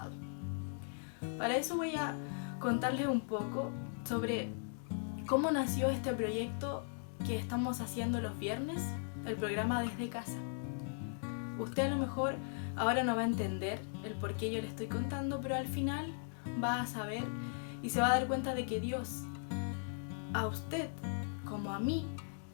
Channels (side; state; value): right; silent; digital silence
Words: Para eso voy a contarles un poco sobre cómo nació este proyecto que estamos haciendo los viernes, el programa Desde Casa. Usted a lo mejor ahora no va a entender el por qué yo le estoy contando, pero al final va a saber y se va a dar cuenta de que Dios, a usted como a mí,